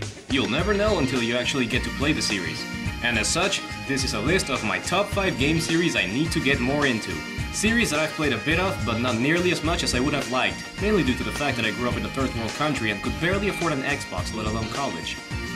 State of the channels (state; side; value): identical; both; correlation 1.00